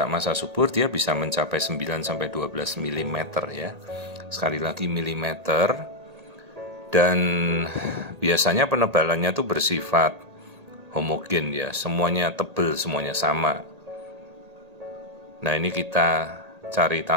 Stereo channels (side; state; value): left; late; 1.8 ms